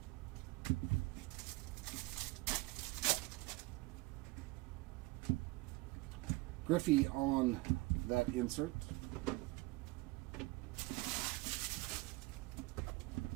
Griffey on that insert.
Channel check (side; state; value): left; quieter; 22.1 dB